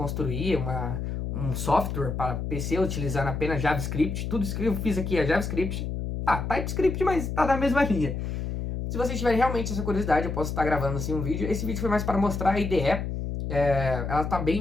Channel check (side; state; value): left; noise; hum, 4 dB below the sound